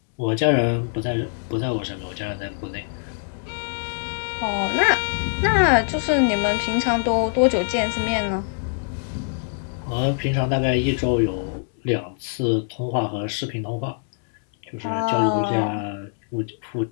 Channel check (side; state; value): right; silent; digital silence